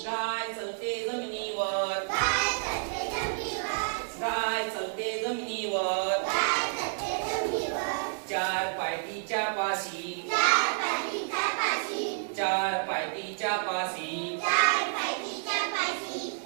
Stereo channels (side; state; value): left; silent; digital silence